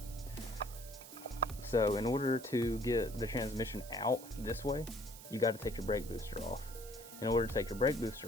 So in order to get the transmission out this way, you got to take your brake booster off. In order to take your brake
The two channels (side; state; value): right; noise; hiss, 16 dB below the sound